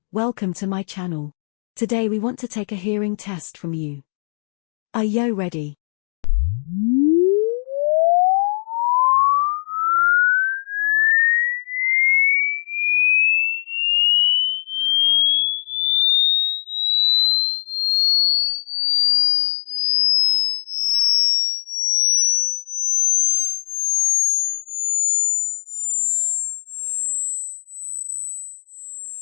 welcome to my channel. Today we want to take a hearing test from you. Are you ready?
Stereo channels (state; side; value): silent; right; digital silence